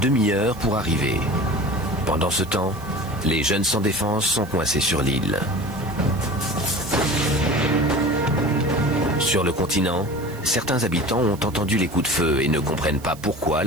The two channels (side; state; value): right; noise; hiss, 21 dB below the sound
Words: pour arriver. Pendant ce temps, les jeunes sans défense sont coincés sur l'île. Sur le continent, certains habitants ont entendu les coups de feu et ne comprennent pas pourquoi